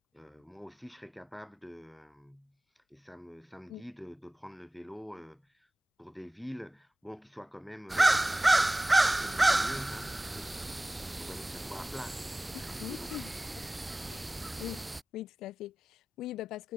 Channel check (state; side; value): normal; both; correlation 0.98